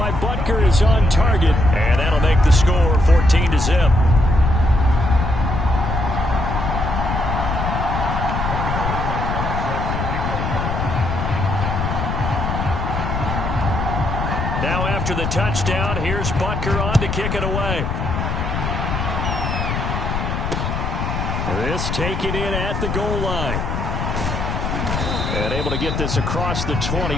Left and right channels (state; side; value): noise; left; rumble, 2 dB below the sound